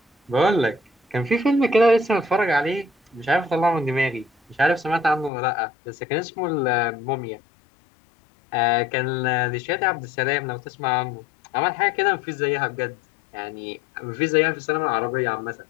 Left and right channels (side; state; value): right; drops out; at 5.3 s